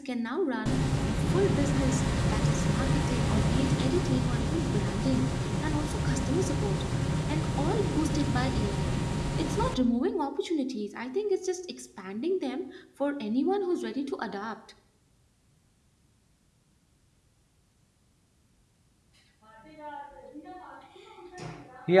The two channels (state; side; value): identical; both; correlation 1.00